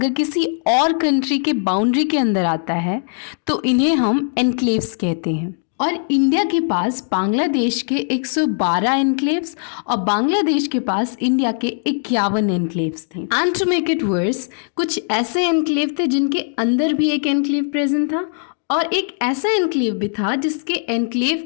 किसी और कंट्री के बाउंड्री के अंदर आता है तो इन्हें हम एनक्लेव्स कहते हैं। और इंडिया के पास बांग्लादेश के 112 एनक्लेव्स और बांग्लादेश के पास इंडिया के 51 एनक्लेव्स थे। And to make it worse, कुछ ऐसे एनक्लेव थे जिनके अंदर भी एक एनक्लेव प्रेजेंट था और एक ऐसा एनक्लेव भी था जिसके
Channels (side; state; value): right; silent; 66 dB below the other